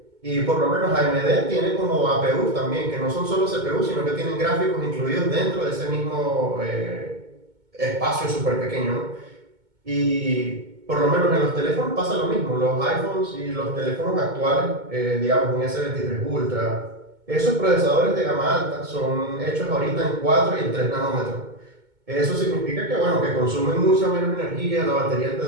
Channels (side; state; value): left; late; 2.2 ms